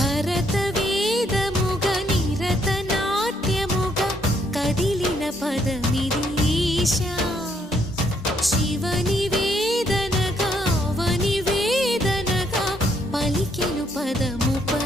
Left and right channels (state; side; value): normal; both; correlation 0.71